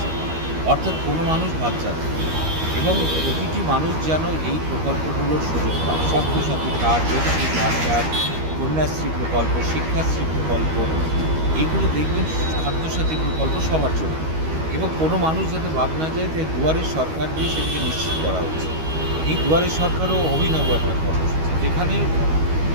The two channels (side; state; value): left; late; 13 ms